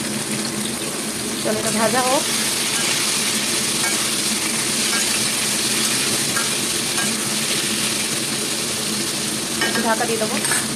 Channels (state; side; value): identical; both; correlation 1.00